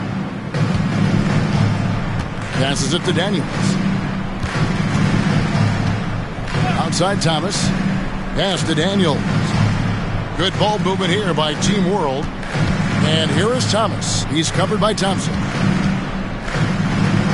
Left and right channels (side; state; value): both; identical; correlation 1.00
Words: Passes it to Daniels. Outside Thomas. Pass to Daniels. Good ball movement here by Team World. And here is Thomas. He's covered by Thompson.